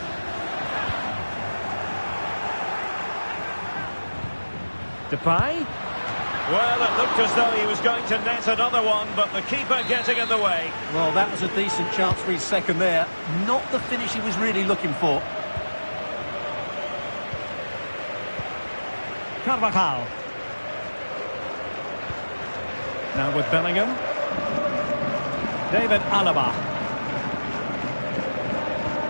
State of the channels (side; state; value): both; inverted; correlation -1.00